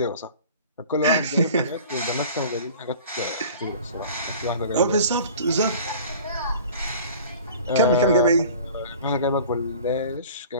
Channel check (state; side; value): inverted; both; correlation -0.43